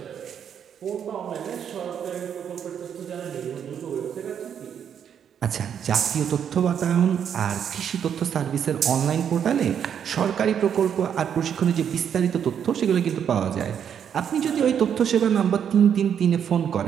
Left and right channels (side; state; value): left; quieter; 8.4 dB